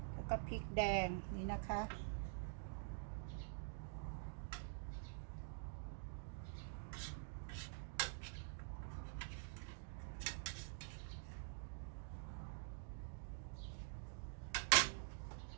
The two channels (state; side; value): silent; left; digital silence